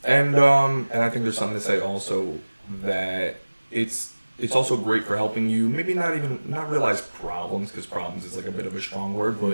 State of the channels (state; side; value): inverted; both; correlation -1.00